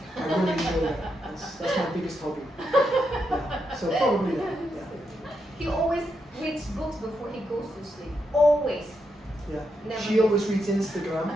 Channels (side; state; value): both; normal; correlation 0.83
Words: I really enjoy that. That's my biggest hobby. Yeah. So probably that. Yeah. He always reads books before he goes to sleep. Always. Yeah. Never She miss. always reads Instagram.